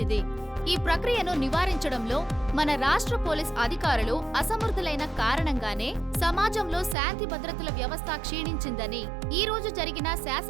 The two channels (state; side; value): drops out; left; at 7.0 s